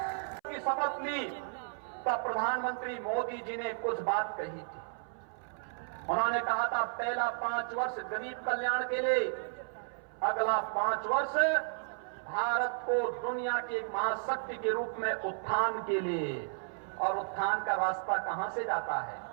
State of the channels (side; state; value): left; silent; 55 dB below the other